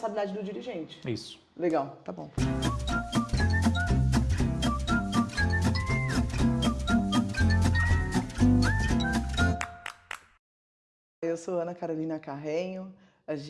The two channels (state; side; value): identical; both; correlation 1.00